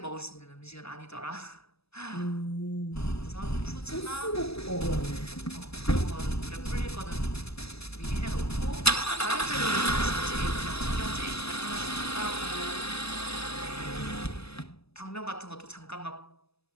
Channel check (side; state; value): right; late; 0.79 ms